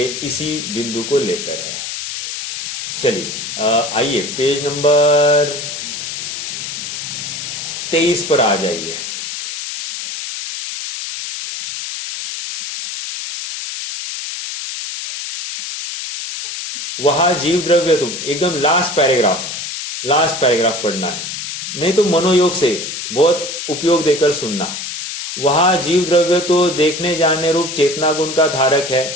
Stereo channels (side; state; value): left; noise; hiss, 6 dB below the sound